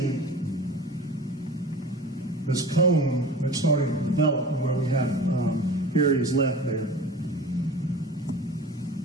this cone that's starting to develop where we have areas left there.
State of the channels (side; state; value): both; normal; correlation 0.38